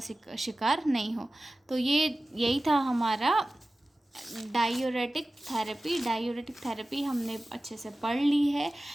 शिकार नहीं हो। तो यही था हमारा डायूरेटिक थेरेपी हमने अच्छे से पढ़ ली है।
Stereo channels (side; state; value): both; normal; correlation 0.96